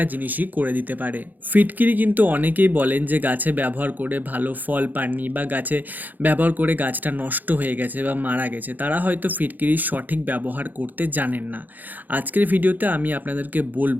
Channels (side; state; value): left; late; 0.084 ms